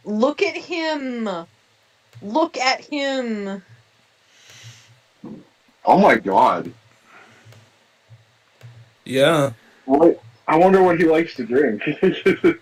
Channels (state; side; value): identical; both; correlation 1.00